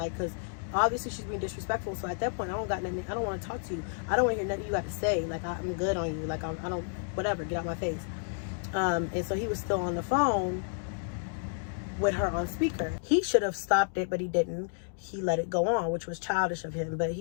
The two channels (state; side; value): silent; right; digital silence